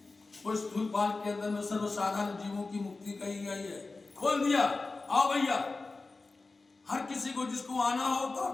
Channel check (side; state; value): right; quieter; 3.6 dB